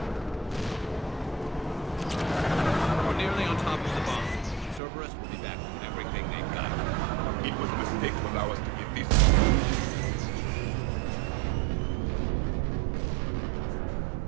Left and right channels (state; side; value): drops out; left; at 4.8 s